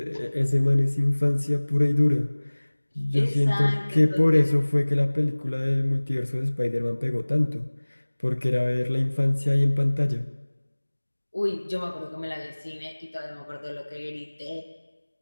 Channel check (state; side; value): inverted; both; correlation -1.00